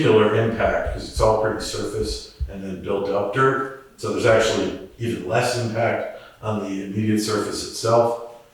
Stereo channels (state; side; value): identical; both; correlation 1.00